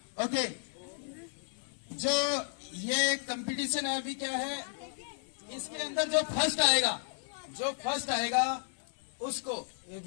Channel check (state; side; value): silent; right; 55 dB below the other